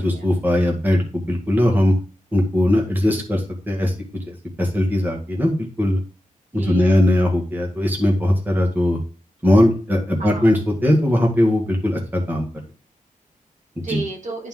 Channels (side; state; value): both; normal; correlation 0.93